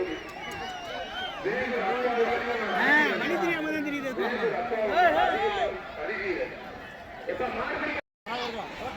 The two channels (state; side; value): identical; both; correlation 1.00